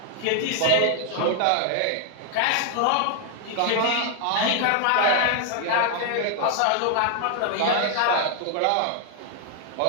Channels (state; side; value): different; both; correlation 0.00